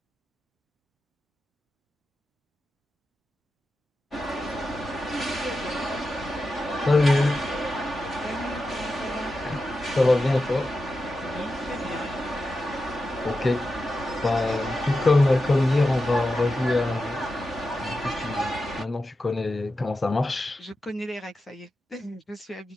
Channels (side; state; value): both; normal; correlation 0.90